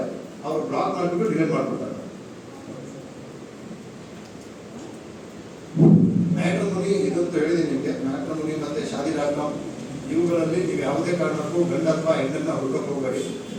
ಅವರು ಬ್ಲಾಕ್ ಮಾಡಿಬಿಟ್ಟು ಡಿಲೀಟ್ ಮಾಡ್ಬಿಡ್ತಾರೆ. ಮ್ಯಾಟ್ರಿಮೋನಿ ಇದಂತೂ ಹೇಳಿದ್ದೀನಿ ನಿಮಗೆ. ಮ್ಯಾಟ್ರಿಮೋನಿ ಮತ್ತೆ ಶಾದಿ.com ಇವುಗಳಲ್ಲಿ ನೀವು ಯಾವುದೇ ಕಾರಣಕ್ಕೂ ಗಂಡ ಅಥವಾ ಹೆಣ್ಣನ್ನ ಹುಡುಕಕ್ಕೆ ಹೋಗಬೇಡಿ.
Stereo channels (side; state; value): both; identical; correlation 1.00